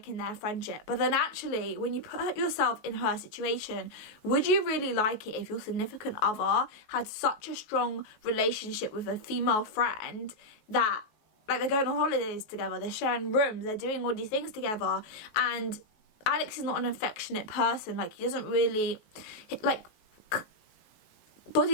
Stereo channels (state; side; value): late; right; 19 ms